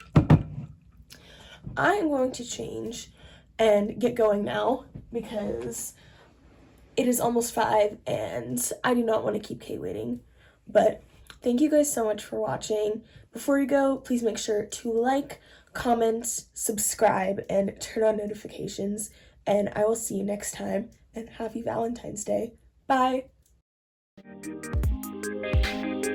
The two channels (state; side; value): identical; both; correlation 1.00